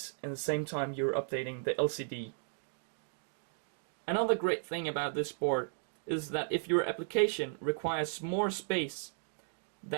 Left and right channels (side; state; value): left; silent; digital silence